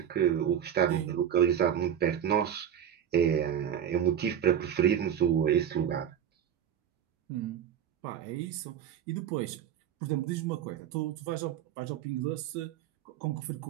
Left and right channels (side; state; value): left; quieter; 9.4 dB